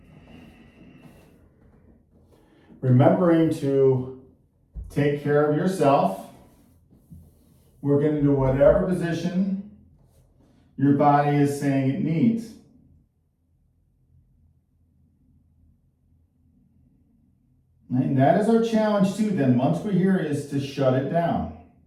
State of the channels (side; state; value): both; identical; correlation 1.00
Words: Remembering to take care of yourself. We're going to do whatever position your body is saying it needs. And that is our challenge too, then, once we're here, is to shut it down.